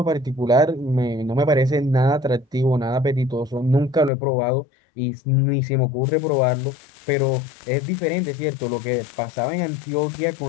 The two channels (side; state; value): right; drops out; at 4.1 s